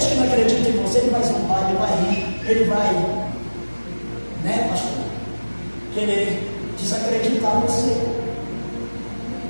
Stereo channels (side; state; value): both; inverted; correlation -1.00